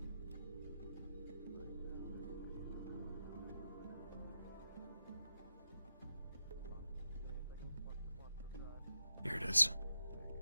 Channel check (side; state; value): both; inverted; correlation -0.87